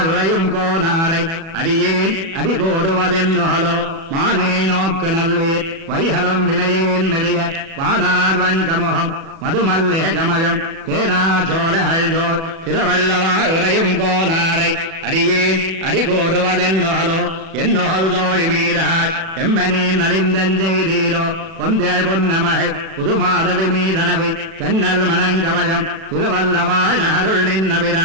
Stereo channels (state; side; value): late; left; 37 ms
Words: உரையும் கோனாரை அடியேன் அடிகோடுவதென்னுகளோ மானே நோக்கு நல்லீர் வைகலம் வினையேன் மெலிய வானார் வங்கமுகம் மதுமல்லிக கமலம் தேனா சோழோர் திருவல்லவாள் உரையும் கோனாரை அடியேன் அடிகோடுவதென்னுகளோ என்னோள் தோழி மீறாய் எம்பனே நலிந்தஞ்செய்தீரோ பொந்தேள் பொன்னமகை புதுமாதவி மீதனவை தென்னல் மணங்கவயம் திருவல்லவாய் அருள்